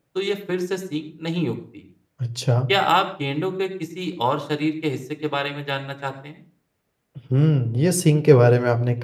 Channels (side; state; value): both; identical; correlation 1.00